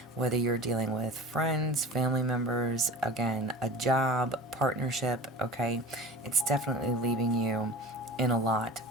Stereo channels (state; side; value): normal; both; correlation 0.36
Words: whether you're dealing with friends, family members, again, a job, partnership, okay, it's definitely leaving you in a lot